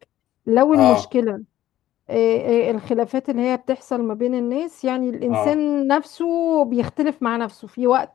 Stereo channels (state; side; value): quieter; right; 13.4 dB